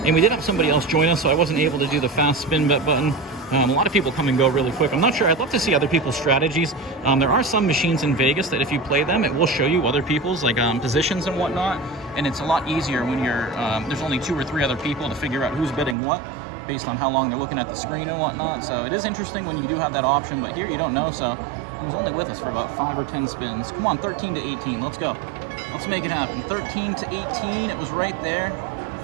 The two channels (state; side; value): drops out; left; at 16.0 s